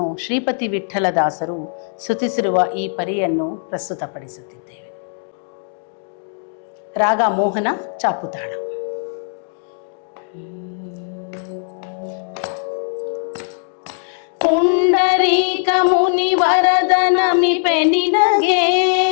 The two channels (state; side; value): silent; right; digital silence